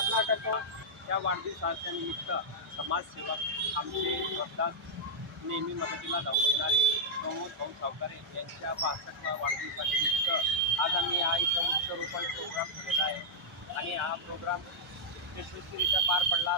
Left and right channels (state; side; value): normal; both; correlation -0.03